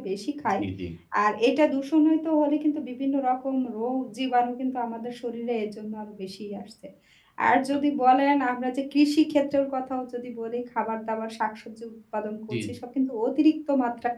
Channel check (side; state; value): both; identical; correlation 1.00